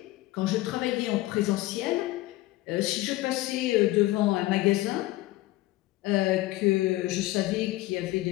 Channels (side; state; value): right; quieter; 17.8 dB